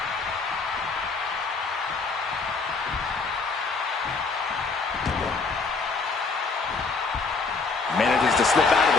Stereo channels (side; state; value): right; quieter; 4.3 dB